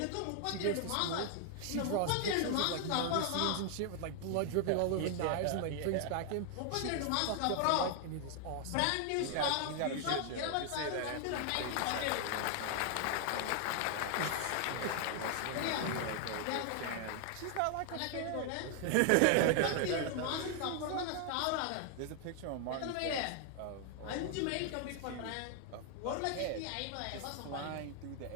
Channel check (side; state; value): both; different; correlation 0.00